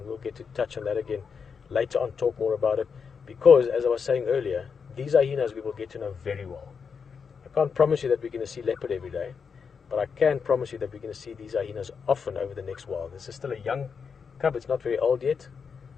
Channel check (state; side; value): quieter; right; 6.0 dB